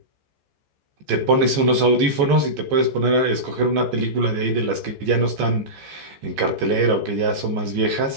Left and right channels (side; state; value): left; late; 14 ms